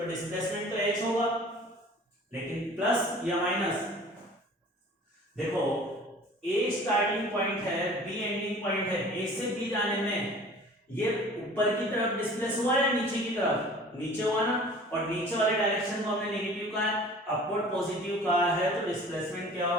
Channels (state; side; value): normal; both; correlation 0.46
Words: डिस्प्लेसमेंट तो h होगा, लेकिन प्लस या माइनस, देखो a स्टार्टिंग पॉइंट है, b एंडिंग पॉइंट है, a से b जाने में ये ऊपर की तरफ डिस्प्लेस हुआ या नीचे की तरफ, नीचे हुआ ना, और नीचे वाले डायरेक्शन को हमने नेगेटिव कहा है, अपवर्ड पॉजिटिव कहा है, तो डिस्प्लेसमेंट क्या